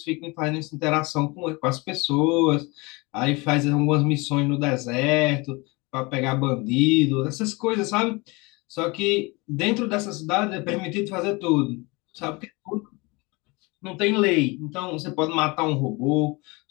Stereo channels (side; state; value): right; quieter; 25.7 dB